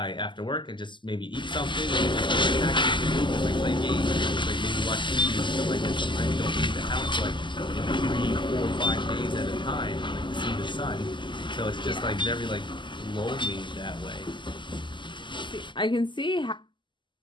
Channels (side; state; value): right; late; 0.23 ms